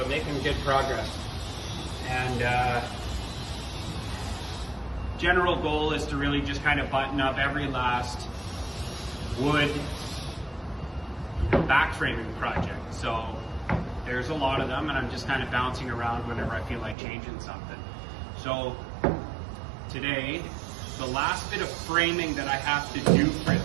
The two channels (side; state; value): left; drops out; at 16.9 s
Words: making good progress. And general goal is to really just kind of button up every last wood back framing project. So, there's a lot of them, and I'm just kind of bouncing around whenever I feel like changing something. So, today, the last bit of framing that I have to do for